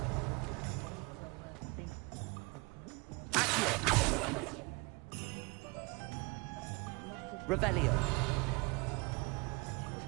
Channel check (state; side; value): quieter; left; 27.2 dB